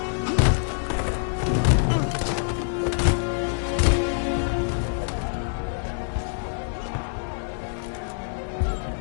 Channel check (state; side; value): silent; right; 61 dB below the other